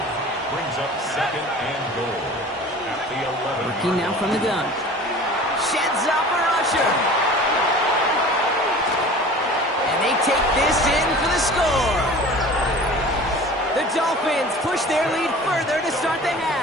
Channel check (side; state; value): both; normal; correlation 0.42